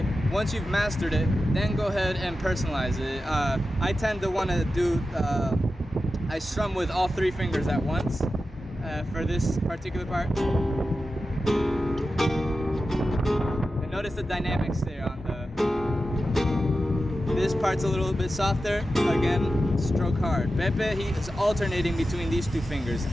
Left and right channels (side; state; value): both; normal; correlation 0.92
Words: Once you've mastered it, then go ahead and personalize it. I tend to want to do, I strum with all 3 fingers at once for this particular part. And notice the dynamics there on this part's a little bit softer. Again, stroke hard. Pepe, he is alternating between these 2 fingers.